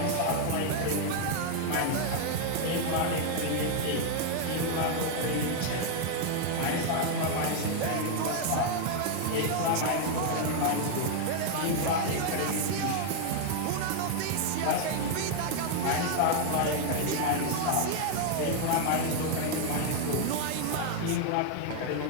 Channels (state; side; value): different; both; correlation 0.00